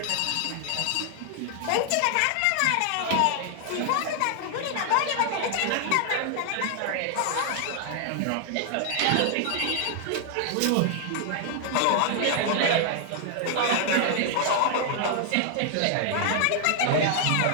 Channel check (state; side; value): different; both; correlation 0.00